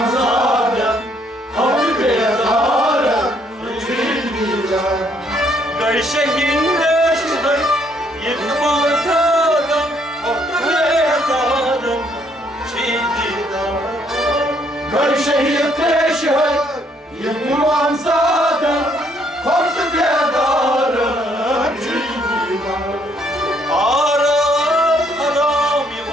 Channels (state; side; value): normal; both; correlation 0.68